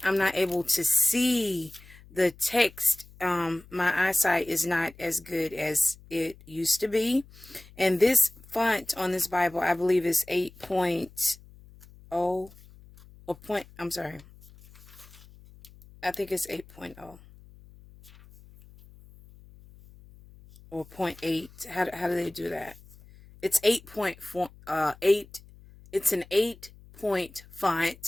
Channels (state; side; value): noise; left; hum, 23 dB below the sound